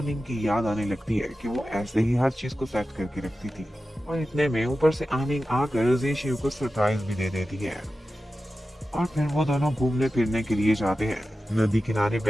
की याद आने लगती है कि वो ऐसे ही हर चीज को सेट करके रखती थी। और इतने में ऊपर से आनिंग आकर जी शियू को सरप्राइज भी दे देती है। और फिर वो दोनों घूमने फिरने के लिए जाते हैं। नदी किनारे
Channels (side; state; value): both; normal; correlation 0.93